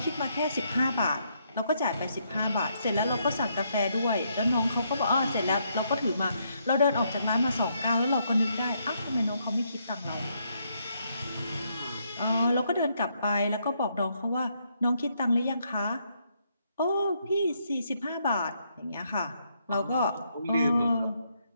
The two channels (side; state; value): both; inverted; correlation -0.75